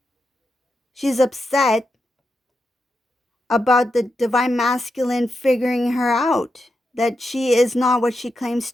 She's upset about the divine masculine figuring her out, that she is not what she claims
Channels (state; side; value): normal; both; correlation 0.86